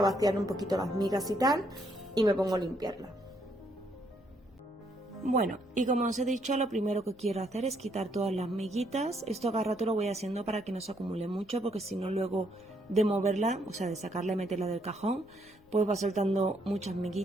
un poquito las migas y tal y me pongo a limpiarla. Bueno, y como os he dicho, lo primero que quiero hacer es quitar todas las miguitas. Esto cada rato lo voy haciendo para que no se acumule mucho, porque si no luego de moverla, o sea, de sacarla y meterla del cajón, pues va soltando muchas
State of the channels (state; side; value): noise; left; rumble, 28 dB below the sound